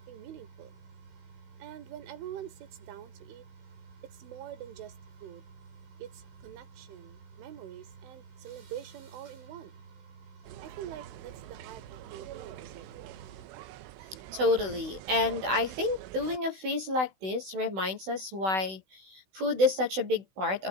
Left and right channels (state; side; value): late; left; 16 ms